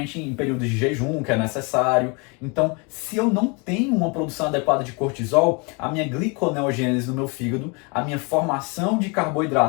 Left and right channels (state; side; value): quieter; right; 31.5 dB